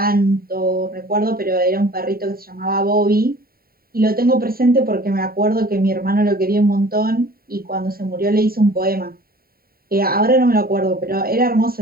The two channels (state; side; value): late; left; 0.43 ms